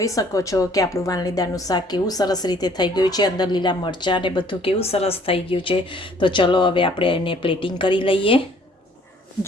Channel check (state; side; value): normal; both; correlation 0.59